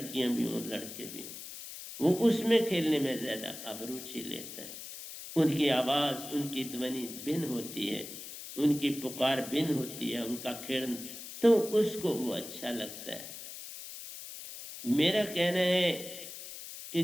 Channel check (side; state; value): left; noise; hiss, 11 dB below the sound